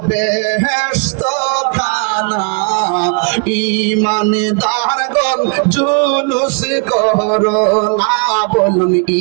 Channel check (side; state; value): left; quieter; 37.1 dB